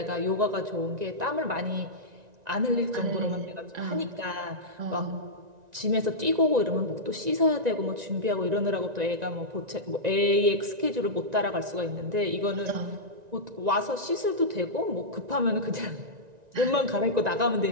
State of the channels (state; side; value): late; left; 1.9 ms